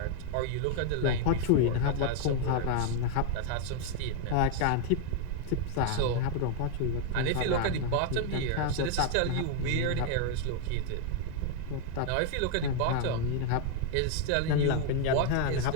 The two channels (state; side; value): different; both; correlation 0.00